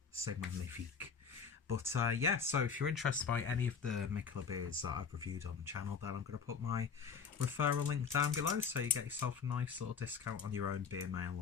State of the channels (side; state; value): right; quieter; 6.1 dB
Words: c'est magnifique. But yeah, so if you're interested by any of the Mikkeller beers that I've reviewed on the channel, then I'm going to put my referral link down below so you get yourself a nice little discount on your own beer mail